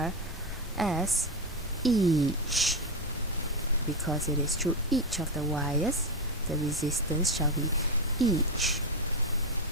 as each, because it is through each of the wires. The resistance shall be each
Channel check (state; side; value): normal; both; correlation 0.10